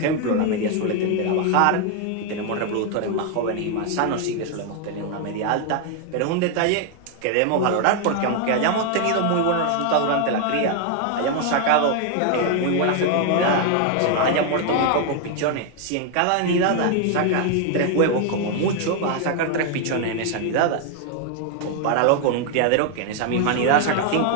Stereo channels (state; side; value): different; both; correlation 0.00